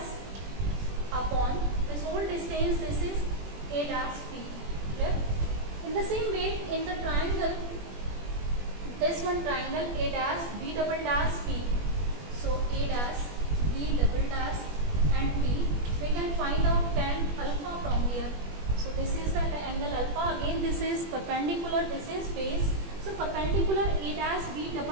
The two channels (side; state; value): left; late; 21 ms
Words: upon this whole distance, this is A dash, P. Clear? In the same way, in the triangle, this one triangle A dash, B double dash, P. So A dash, B double dash and P. We can find out tan alpha from here. So this is the angle alpha. Again this is perpendicular, this is base. So perpendicular A dash, B